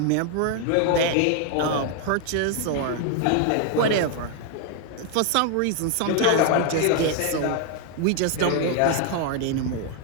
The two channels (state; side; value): different; both; correlation 0.00